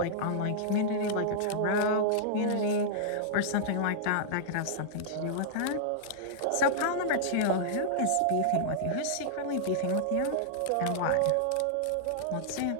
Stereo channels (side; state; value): both; different; correlation -0.01